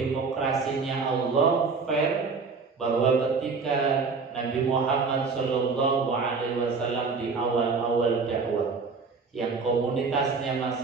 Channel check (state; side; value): quieter; left; 4.7 dB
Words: Allah, fair, bahwa ketika Nabi Muhammad SAW di awal-awal dakwah, yang komunitasnya